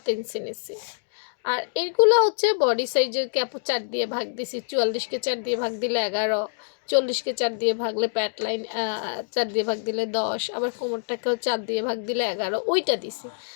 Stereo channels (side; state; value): right; silent; digital silence